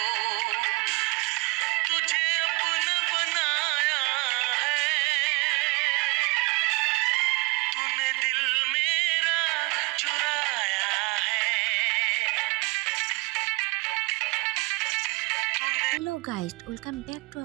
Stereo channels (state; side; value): quieter; left; 26.9 dB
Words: तुझे अपना बनाया है तूने, दिल मेरा चुराया है। Hello guys, welcome back to